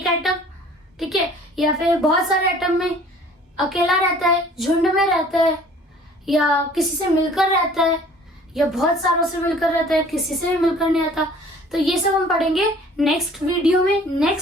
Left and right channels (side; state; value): both; normal; correlation 0.51